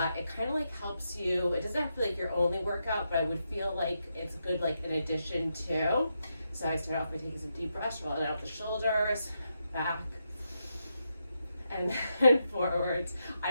it kind of like helps you. It doesn't have to be like your only workout, but I would feel like it's good like in addition to. So I start off by taking some deep breaths, rolling out the shoulders, back, and then forwards. I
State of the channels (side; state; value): both; inverted; correlation -0.84